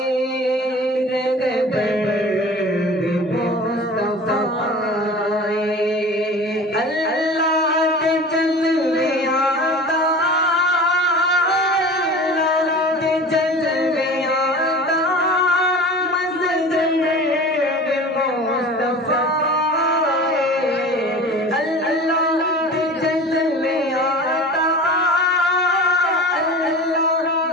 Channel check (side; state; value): both; normal; correlation 0.37